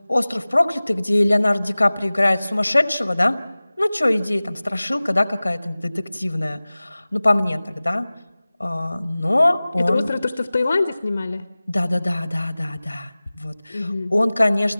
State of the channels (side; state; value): both; inverted; correlation -0.98